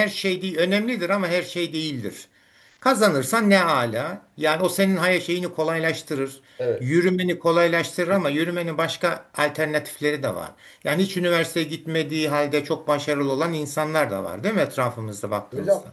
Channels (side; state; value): both; identical; correlation 1.00